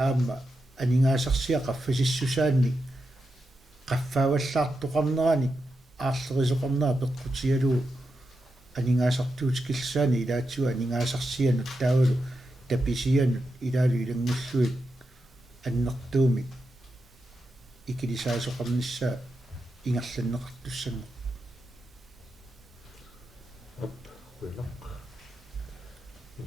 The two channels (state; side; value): normal; both; correlation 0.87